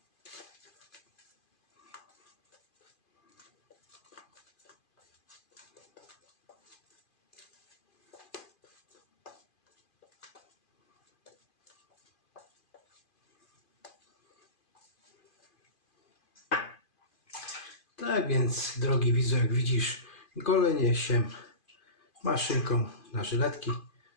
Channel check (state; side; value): late; right; 2.5 ms